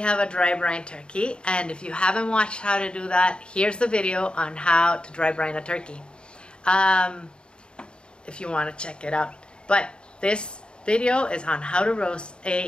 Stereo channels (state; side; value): late; right; 0.052 ms